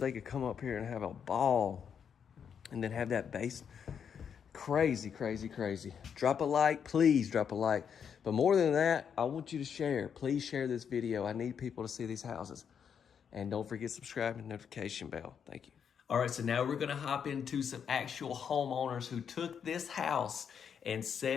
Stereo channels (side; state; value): right; quieter; 7.5 dB